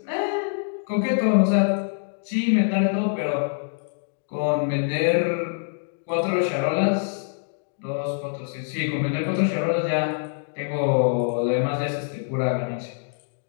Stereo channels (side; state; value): right; silent; digital silence